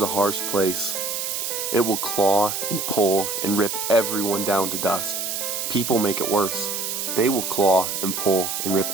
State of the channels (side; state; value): right; noise; hiss, 3 dB below the sound